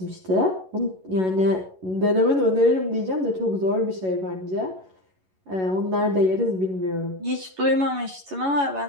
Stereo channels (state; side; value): late; left; 11 ms